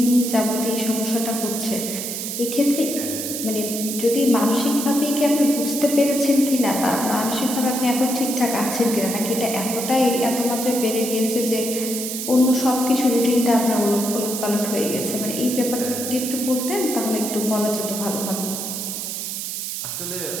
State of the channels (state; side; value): noise; right; hiss, 5 dB below the sound